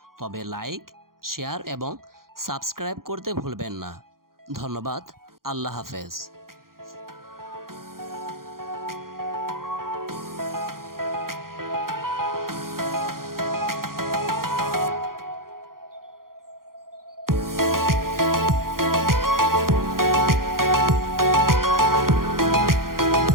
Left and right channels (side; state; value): left; late; 0.92 ms